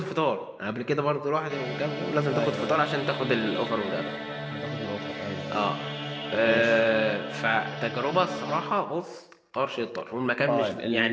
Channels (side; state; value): both; identical; correlation 1.00